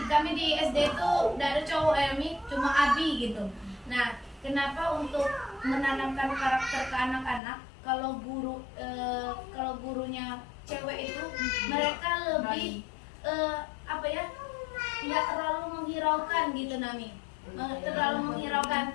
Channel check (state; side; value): drops out; right; at 7.4 s